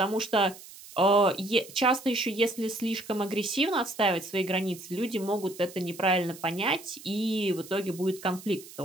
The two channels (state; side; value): noise; right; hiss, 17 dB below the sound